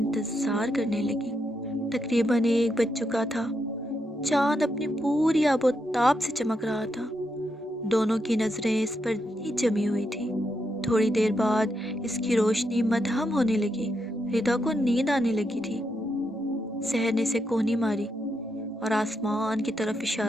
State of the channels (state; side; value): normal; both; correlation 0.82